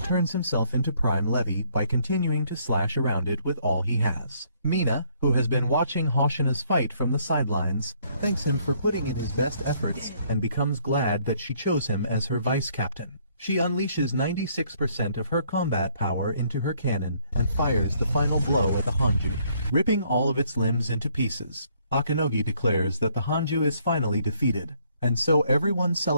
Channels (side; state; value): both; inverted; correlation -0.66